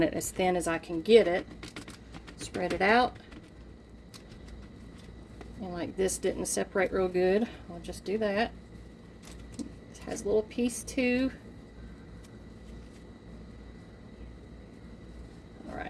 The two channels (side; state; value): both; identical; correlation 1.00